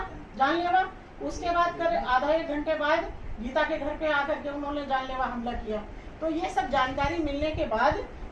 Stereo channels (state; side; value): identical; both; correlation 1.00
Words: जानलेवा। उसके बाद आधा 1 घंटे बाद गीता के घर पे आकर के उन्होंने जानलेवा हमला किया। तो ये सब जानकारी मिलने के बाद